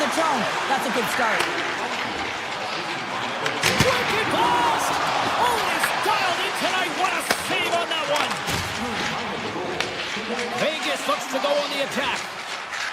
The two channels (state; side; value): identical; both; correlation 1.00